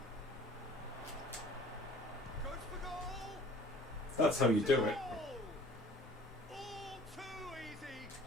Goes for goal. That's how you do it. Goal! All too easy.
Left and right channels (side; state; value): both; normal; correlation 0.48